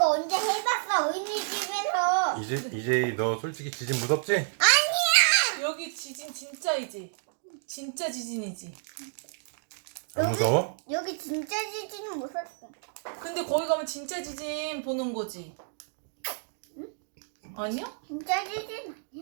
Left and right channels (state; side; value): silent; left; digital silence